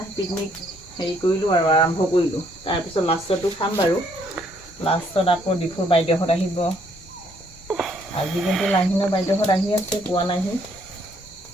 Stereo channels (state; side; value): normal; both; correlation 0.68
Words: পিকনিক হেৰি কৰিলোঁ আৰু আৰম্ভ কৰিলোঁ। তাৰপিছত লাষ্টতো খাম বাৰু। লাষ্টত আকৌ ডিফুৰ বাইদেউহঁত আহিব। আজি কিন্তু লাহিনৰ বাইদেউহঁত আহি আছে, পোৱা নাহি,